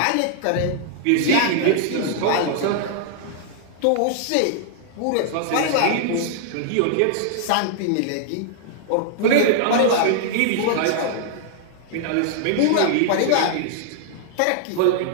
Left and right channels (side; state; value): both; different; correlation -0.01